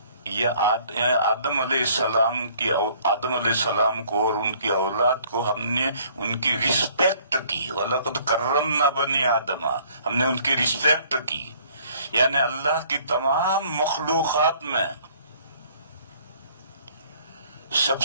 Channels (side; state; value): both; inverted; correlation -0.58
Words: یہ آدم علیہ السلام کو اور ان کی اولاد کو ہم نے ان کی رسپیکٹ کی، وَلَقَدْ كَرَّمْنَا بَنِي آدَمَ، ہم نے ان کی رسپیکٹ کی، یعنی اللہ کی تمام مخلوقات میں سب